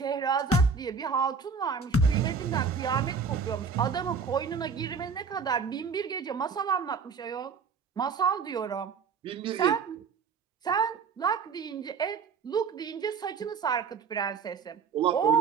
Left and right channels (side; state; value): left; quieter; 5.6 dB